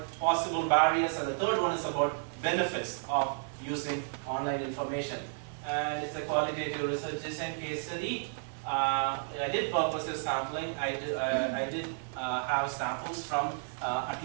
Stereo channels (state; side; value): silent; left; digital silence